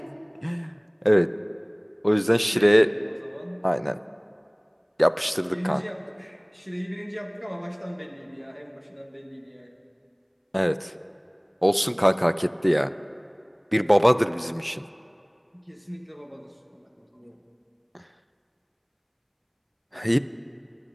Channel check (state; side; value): identical; both; correlation 1.00